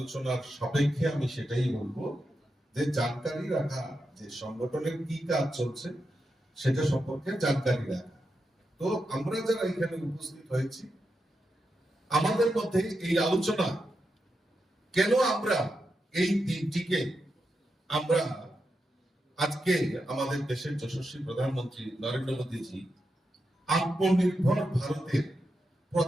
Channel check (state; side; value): normal; both; correlation 0.87